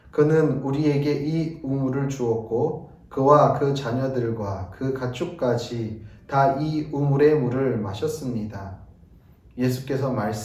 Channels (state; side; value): identical; both; correlation 1.00